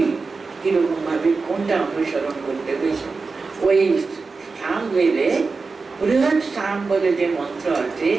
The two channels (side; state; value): left; quieter; 4.3 dB